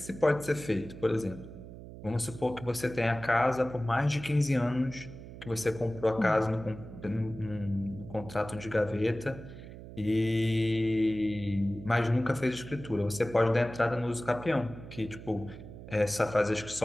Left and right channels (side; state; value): right; noise; hum, 14 dB below the sound